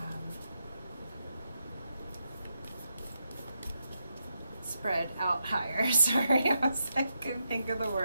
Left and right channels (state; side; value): inverted; both; correlation -0.84